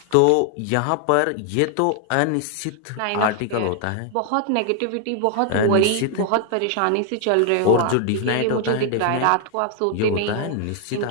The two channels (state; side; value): different; both; correlation 0.00